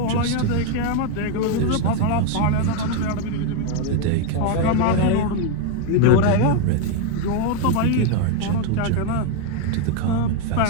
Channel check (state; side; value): different; both; correlation 0.02